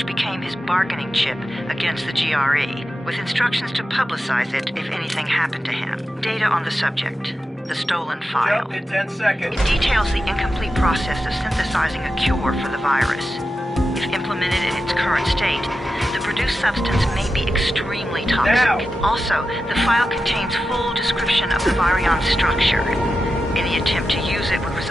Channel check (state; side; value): normal; both; correlation 0.91